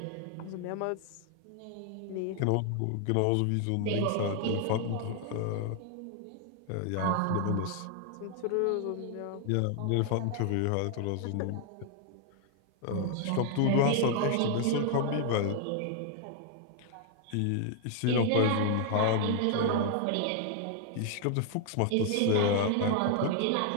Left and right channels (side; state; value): both; different; correlation 0.00